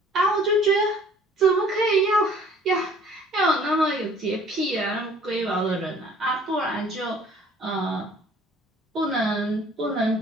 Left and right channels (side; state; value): both; normal; correlation 0.54